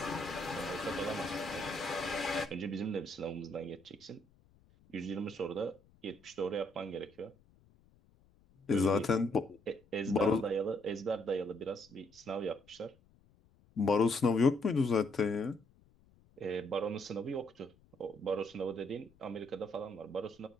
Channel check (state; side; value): noise; left; rumble, 30 dB below the sound